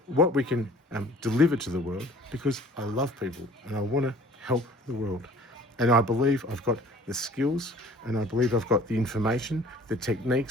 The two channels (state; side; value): normal; both; correlation 0.50